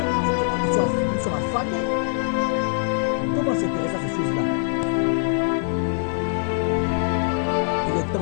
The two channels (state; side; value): silent; right; digital silence